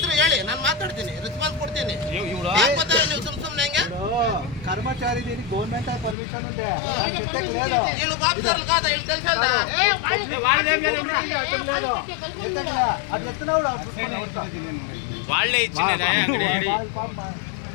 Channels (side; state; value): right; drops out; at 6.2 s